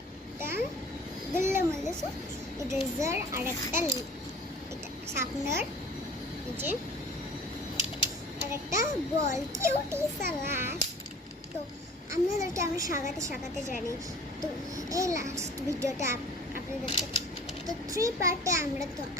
একটা গুল্লা মল্লিস ইরেজার আর একটা এটা শার্পনার যে আর একটা বল কিউটি সালাস। তো আপনাদেরকে আমি সাগাতে জানি। তো এই লাস্ট ভিডিওটা আপনাদেরকে তো 3 পার্টে আমরা তো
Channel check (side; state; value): both; normal; correlation 0.45